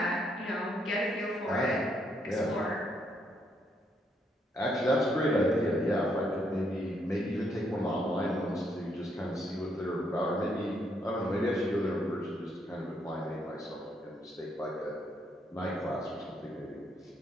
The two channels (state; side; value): normal; both; correlation 0.74